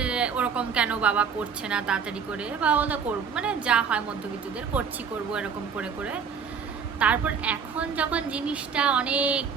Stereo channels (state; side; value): quieter; left; 6.4 dB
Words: ওরকম কেন বাবা করছে না তাড়াতাড়ি করে, বা ওদের করবো, মানে যা হয় মধ্যবিত্তদের করবো এরকম করে করে। তারপর এখন যখন জিনিসটা অনেক